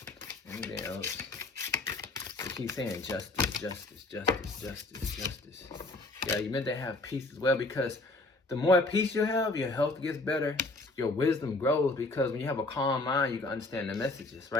Anything else? They keep saying justice, justice, justice, justice, justice. Yeah, you're meant to have peace as well, because the more peace you have, your health gets better, your wisdom grows, because when you have a calm mind, you can understand the messages,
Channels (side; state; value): right; quieter; 3.0 dB